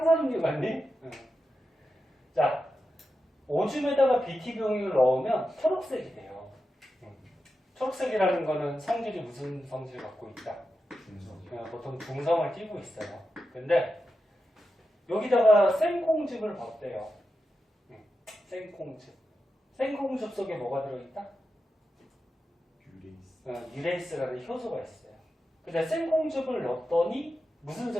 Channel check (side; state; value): both; normal; correlation 0.89